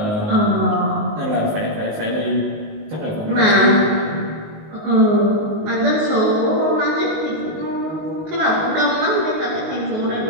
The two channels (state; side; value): late; left; 19 ms